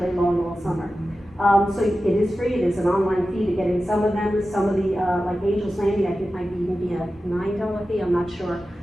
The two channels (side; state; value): both; normal; correlation 0.93